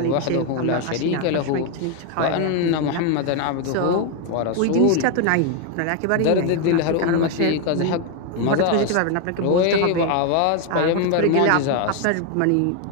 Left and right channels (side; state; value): both; different; correlation 0.01